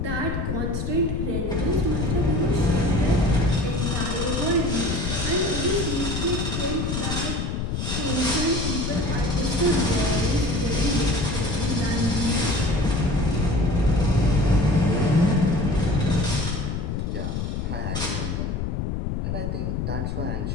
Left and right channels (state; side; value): noise; left; rumble, 2 dB below the sound